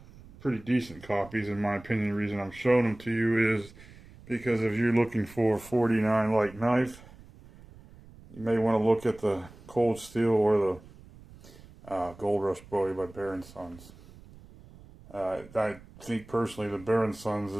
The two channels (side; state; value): right; noise; rumble, 21 dB below the sound